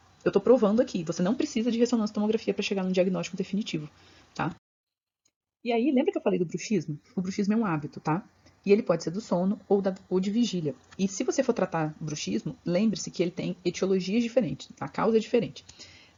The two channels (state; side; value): identical; both; correlation 1.00